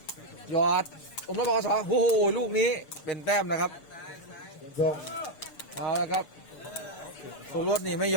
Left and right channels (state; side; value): late; right; 6.8 ms